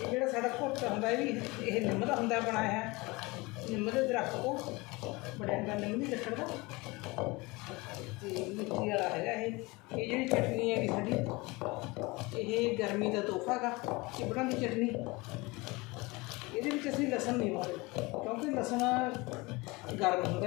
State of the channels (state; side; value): quieter; right; 24.0 dB